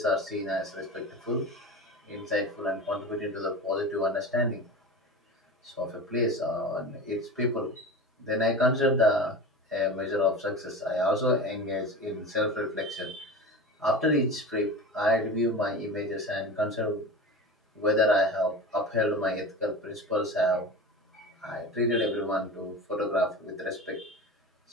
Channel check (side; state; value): both; normal; correlation 0.31